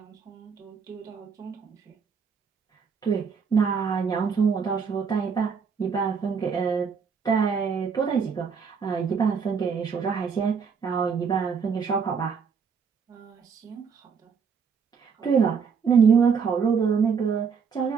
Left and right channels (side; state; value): left; quieter; 6.1 dB